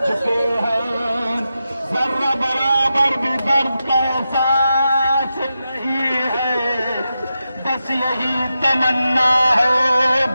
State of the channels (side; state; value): both; inverted; correlation -0.90